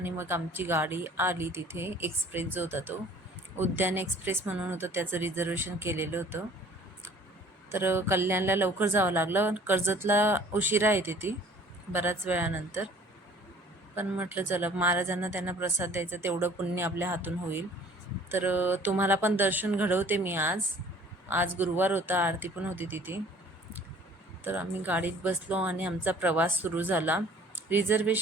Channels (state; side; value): normal; both; correlation 0.52